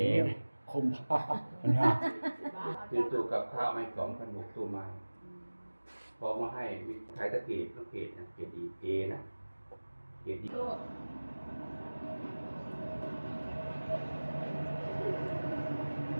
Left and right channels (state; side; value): inverted; both; correlation -1.00